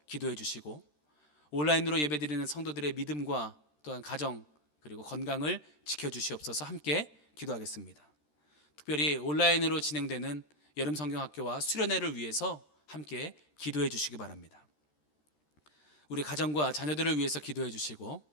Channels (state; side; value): late; right; 13 ms